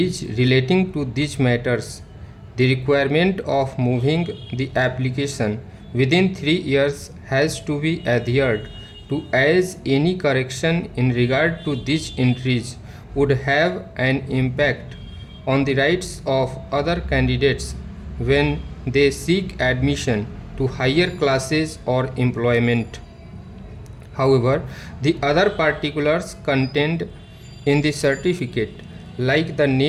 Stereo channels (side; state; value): both; identical; correlation 1.00